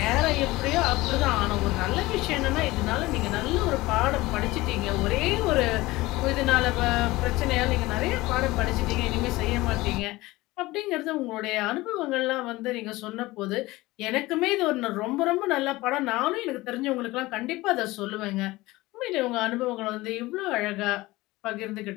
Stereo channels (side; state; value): right; quieter; 19.7 dB